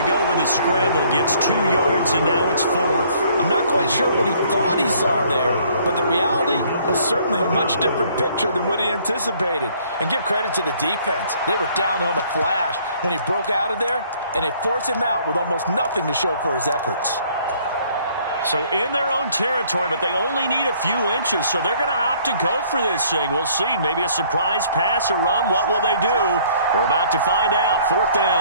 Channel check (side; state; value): both; inverted; correlation -0.60